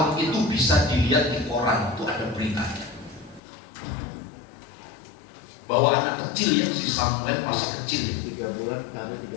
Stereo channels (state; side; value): drops out; right; at 3.4 s